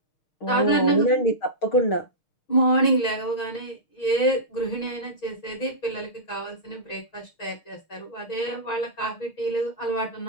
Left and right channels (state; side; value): late; right; 6.2 ms